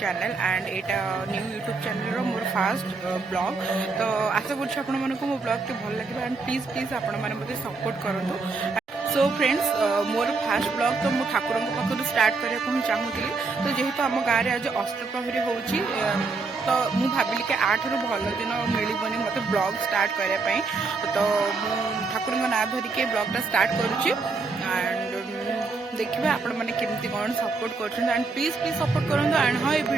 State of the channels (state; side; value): quieter; left; 4.1 dB